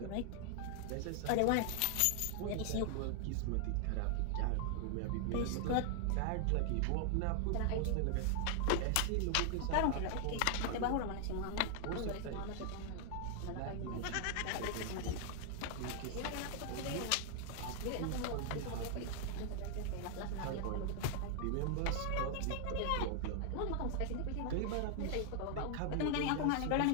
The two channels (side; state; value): both; different; correlation 0.00